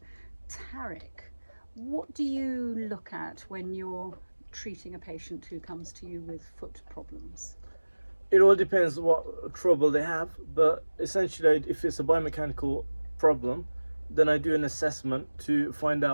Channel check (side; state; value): both; inverted; correlation -1.00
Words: Tarek, what do you look at when you're treating a patient who comes to you with foot problems? It all depends what trouble they have, but essentially, if it's a biomechanical problem, then I do an assessment to find